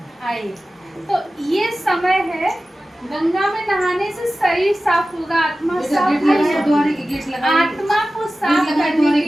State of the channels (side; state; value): both; normal; correlation 0.95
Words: आए। तो ये समय है, गंगा में नहाने से शरीर साफ होगा, आत्मा साफ होगा। आत्मा को साफ करने